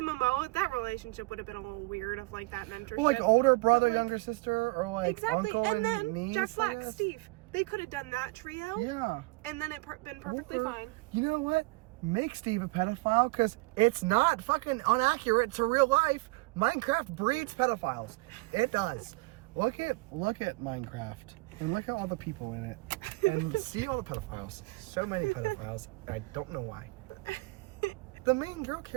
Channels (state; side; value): quieter; left; 25.3 dB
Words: Momoa, that relationship would have been a little weird of like that mentorship. Well, like older brother, like, younger sister, or like exactly. uncle and then niece, Jack Black, Steve. They could have done that trio. Yeah. And then it been perfectly fine. You know what? Make Steve a pedophile, because it's not fucking inaccurate to real life. Minecraft breeds pedophiles. It does. Look at Minecraft and look at all the people in it and see all the pedophiles. So many pedophiles. I don't know why. The main girl